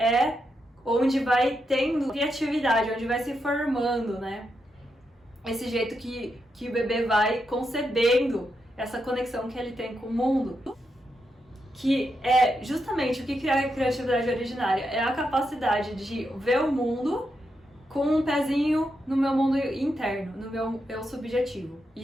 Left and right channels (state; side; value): normal; both; correlation 0.84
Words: onde vai tendo criatividade, onde vai se formando, né? Esse jeito que o bebê vai concebendo essa conexão que ele tem com o mundo. Que é justamente o que cria a criatividade originária. É a capacidade de ver o mundo com um pezinho no meu mundo interno, no meu eu subjetivo. E